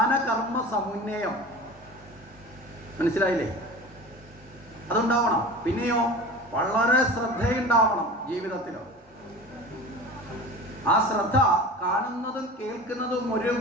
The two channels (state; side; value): normal; both; correlation 0.36